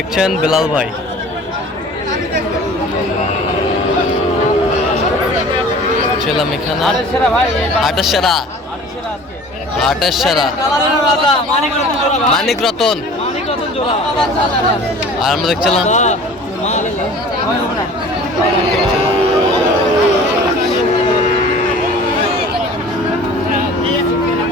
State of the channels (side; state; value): both; normal; correlation 0.44